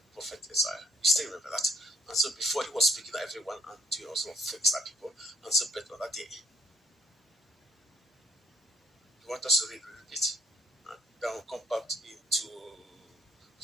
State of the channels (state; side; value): normal; both; correlation 0.67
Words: prophet Isaiah. You still remember that. And so before he was speaking to everyone and doing also things like people, and so better on that day. You want us to read a little bit? And then we'll come back into